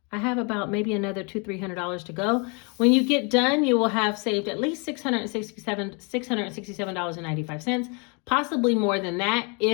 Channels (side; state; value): right; quieter; 33.4 dB